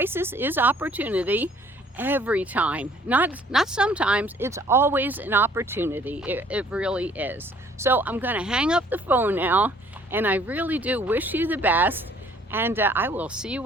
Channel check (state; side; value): normal; both; correlation 0.58